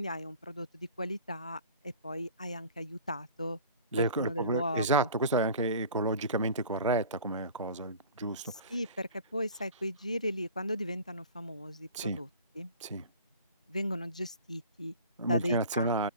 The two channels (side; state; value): both; inverted; correlation -0.43